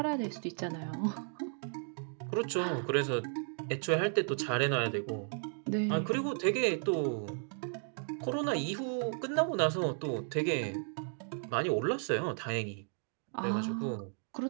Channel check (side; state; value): left; silent; 55 dB below the other